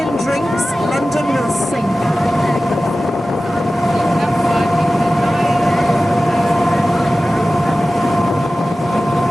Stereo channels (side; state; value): both; normal; correlation 0.95